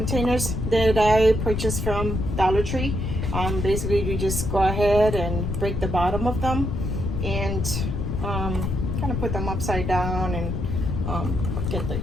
that I purchased from Dollar Tree. Basically you just go ahead and break the bottom of them and kind of put them upside down and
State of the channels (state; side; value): noise; left; rumble, 2 dB below the sound